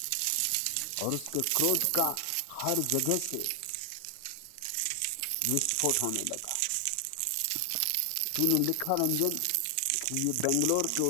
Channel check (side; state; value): both; different; correlation 0.00